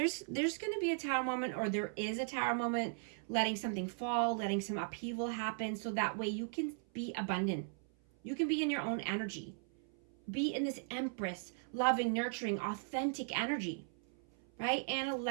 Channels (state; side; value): silent; left; 53 dB below the other